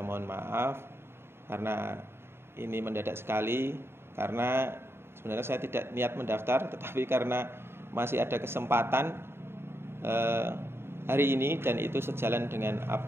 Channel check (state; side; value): late; left; 0.11 ms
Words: mohon maaf karena ini mendadak sekali, karena sebenarnya saya tidak niat mendaftar, tetapi karena masih ada kesempatan hari ini dan itu sejalan dengan